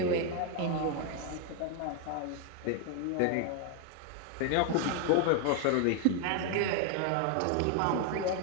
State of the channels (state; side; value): different; both; correlation 0.00